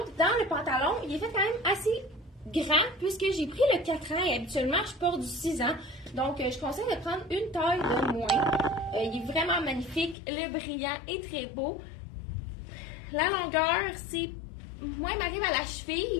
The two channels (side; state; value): right; drops out; at 10.2 s